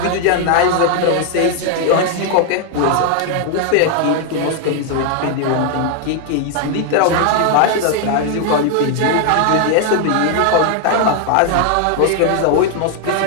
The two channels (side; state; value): both; different; correlation 0.00